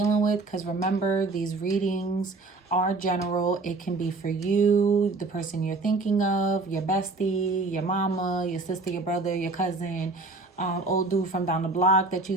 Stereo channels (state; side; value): quieter; left; 3.5 dB